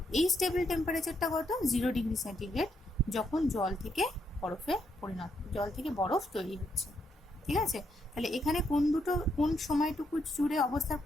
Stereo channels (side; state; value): both; normal; correlation 0.77